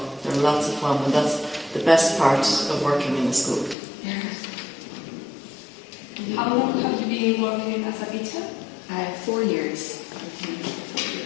They're lots of fun, and that's the best part of working in a school. How long have you been working as a teacher? 4 years.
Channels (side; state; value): right; drops out; at 3.8 s